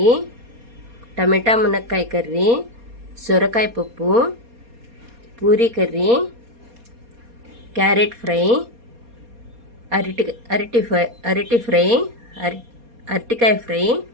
టమాటా మునక్కాయ కర్రీ, సొరకాయ పప్పు, పూరీ కర్రీ, క్యారెట్ ఫ్రై, అరటికాయ ఫ్రై,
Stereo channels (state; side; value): late; left; 4.2 ms